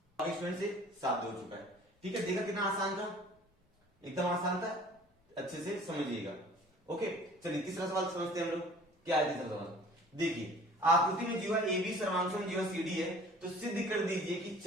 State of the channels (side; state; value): both; normal; correlation 0.49